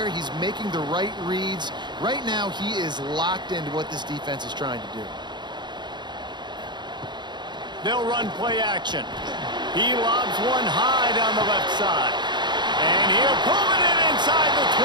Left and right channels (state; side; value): late; left; 0.21 ms